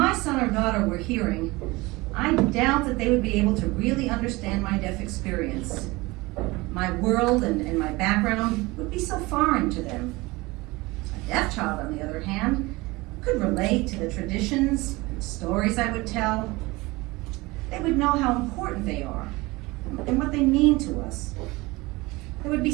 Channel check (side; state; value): left; quieter; 22.3 dB